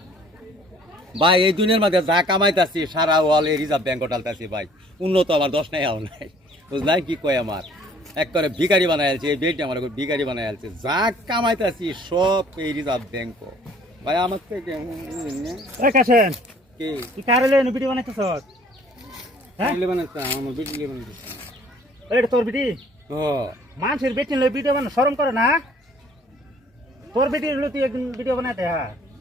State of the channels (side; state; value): both; normal; correlation 0.57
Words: ভাই এই দুনিয়ার মধ্যে যা কামাইতেছি সারা ওয়াল এই রিজার্ভ ব্যাংক টালতেছি ভাই উন্নত আমার দশ নাই আও নাই বুঝলাই কি কয় আমার এক করে ভিখারি বানাই আলছে এই বেডটি আমার ভিখারি বানাই আলছে যা কামাইতেছি সব এই রিজার্ভ ব্যাংক ভাই আমার থেকে কাছেন কি তুই কারে লইন ভিডিও বানাইতেছ হ্যাঁ ভিডিও বানাইতাম আমার ভিডিও বানাইতেছি এটা তোর ভিডি ও মানুষের বেটি লই ভিডিও বানা শরম করে না তোর বেটি লই তুই একদিন ভিডিও বানাইতে হ্যাঁ